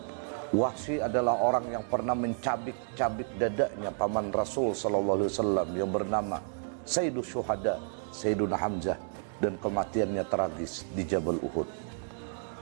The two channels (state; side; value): silent; left; digital silence